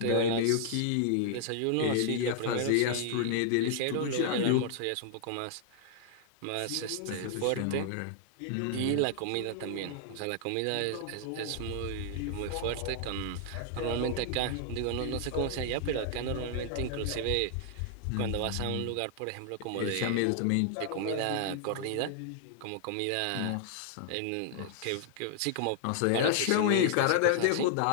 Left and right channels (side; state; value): both; different; correlation 0.00